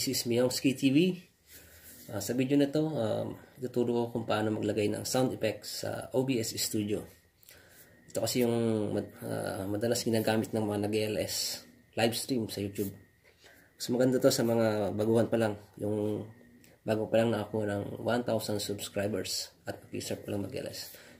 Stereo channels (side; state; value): both; identical; correlation 1.00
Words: is Miyongski TV. Sa video na to, ituturo ko kung paano maglagay ng sound effects sa OBS Studio. Ito kasi yung madalas ginagamit ng mga nag-LS live stream sa YouTube. Mas maganda to sa mga baguhan pa lang, yung bago pa lang na ako ng 1,000 subscribers at mag-start pa lang mag-LS.